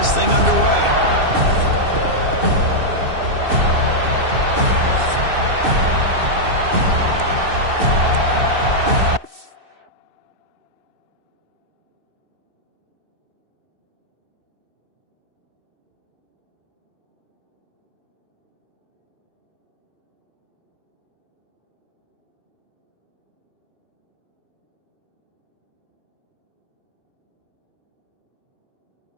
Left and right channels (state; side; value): late; left; 2.6 ms